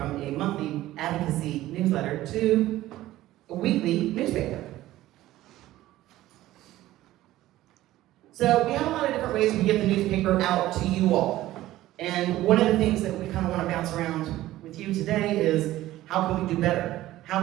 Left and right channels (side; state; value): left; quieter; 15.4 dB